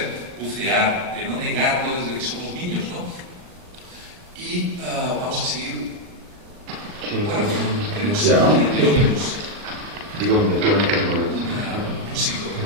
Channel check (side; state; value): left; late; 39 ms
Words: bucear, de no negarlo desde que somos niños, ¿no? Y vamos a seguir. Bueno, digo, me quedo en el momento.